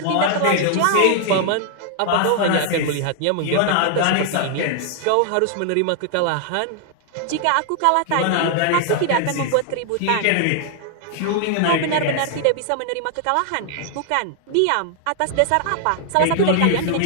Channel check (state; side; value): different; both; correlation 0.00